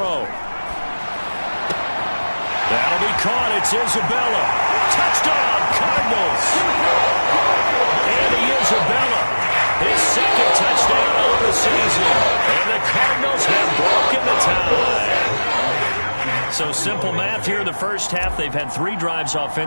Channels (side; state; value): both; inverted; correlation -1.00